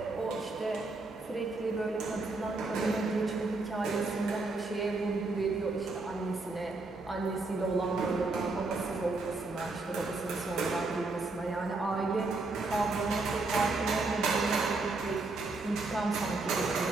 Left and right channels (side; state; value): left; quieter; 3.4 dB